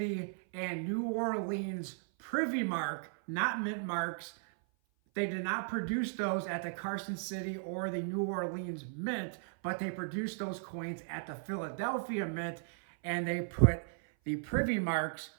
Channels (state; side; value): silent; left; 54 dB below the other